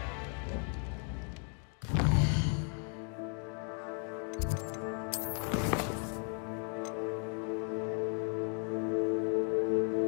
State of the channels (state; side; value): quieter; right; 40.0 dB